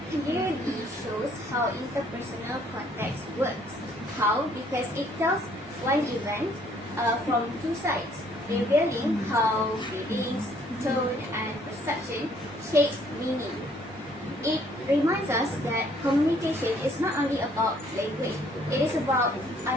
clearly shows how interpersonal context works. How? Because it tells one event from two sides, revealing how feelings, tone, and perception shape meaning. It reminds us that communication is not only about language, it is about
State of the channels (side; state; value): both; normal; correlation 0.63